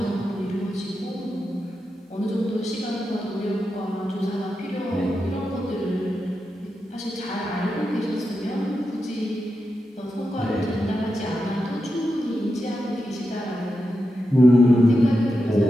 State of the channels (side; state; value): both; normal; correlation 0.88